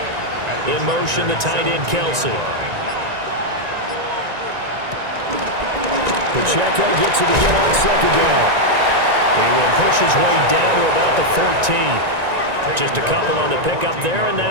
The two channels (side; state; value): left; late; 1.9 ms